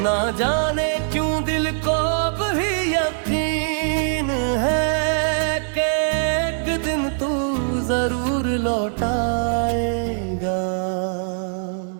ना जाने क्यों दिल को भी यकीन है कि एक दिन तू जरूर लौट आएगा।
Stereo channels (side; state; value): left; silent; digital silence